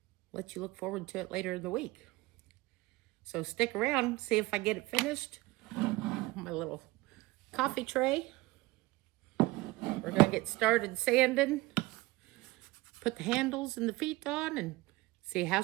let you look forward to it later in the week. So stick around, see if I get it finished. My little coffee tray. We're gonna get started sanding, put the handles and the feet on, and see how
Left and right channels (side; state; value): left; quieter; 20.9 dB